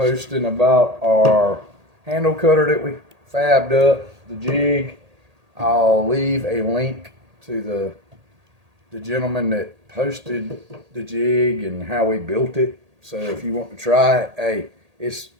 about our handle cutter that we fabbed up, the jig. I'll leave a link to the gentleman that posted the jig and how we built it. So if you want to try it, hey, it's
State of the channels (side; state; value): left; late; 1.8 ms